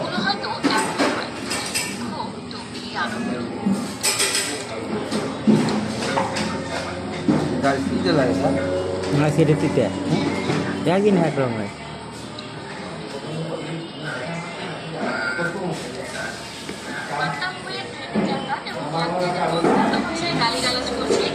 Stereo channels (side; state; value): both; identical; correlation 1.00